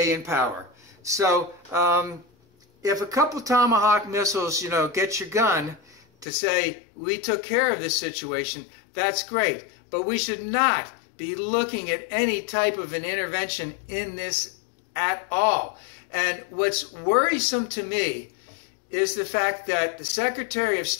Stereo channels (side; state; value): right; drops out; at 6.2 s